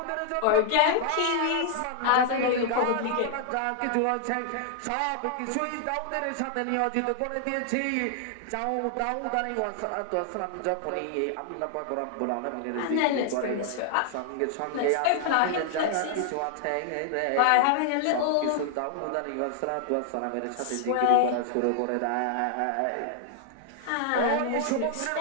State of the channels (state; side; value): different; both; correlation 0.00